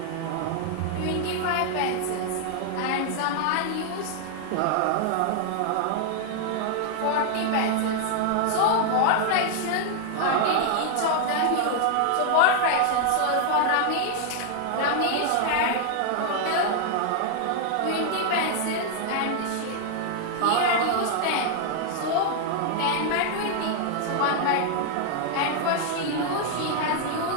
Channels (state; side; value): different; both; correlation 0.00